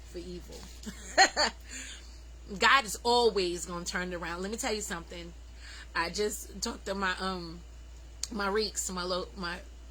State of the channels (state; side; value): identical; both; correlation 1.00